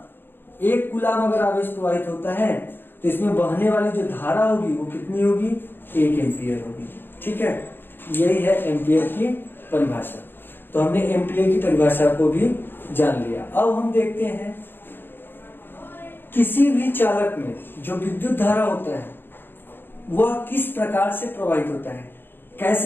1 कूलम अगर आवेश प्रवाहित होता है तो इसमें बहने वाली जो धारा होगी वो कितनी होगी? 1 एम्पियर होगी, ठीक है। यही है एम्पियर की परिभाषा। तो हमने एम्पियर की परिभाषा को भी जान लिया। अब हम देखते हैं किसी भी चालक में जो विद्युत धारा होता है वह किस प्रकार से प्रवाहित होता है,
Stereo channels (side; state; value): right; late; 0.10 ms